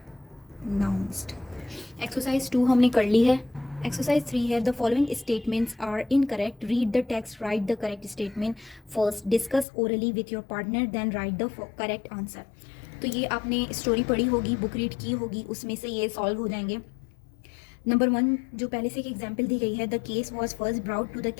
Exercise 2 हमने कर ली है. Exercise 3 है. The following statements are incorrect. Read the text, write the correct statement first. Discuss orally with your partner, then write the correct answer. तो ये आपने स्टोरी पढ़ी होगी, book read की होगी, उसमें से ये सॉल्व हो जाएंगे. नंबर 1 जो पहले से एक एग्जाम्पल दी गई है, the case was first brought to the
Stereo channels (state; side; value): drops out; right; at 9.7 s